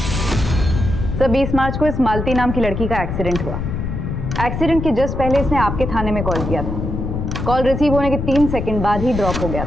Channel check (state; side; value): noise; left; rumble, 4 dB below the sound